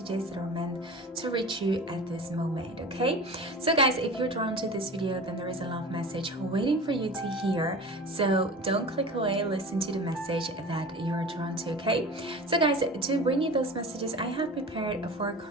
that are meant to reach you at this moment, okay? So guys, if you're drawn to this video, then there is a love message waiting for you to hear. So don't click away, listen to the message that you're drawn to, okay? So guys, to bring you those messages, I have prepared 4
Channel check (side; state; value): both; normal; correlation 0.35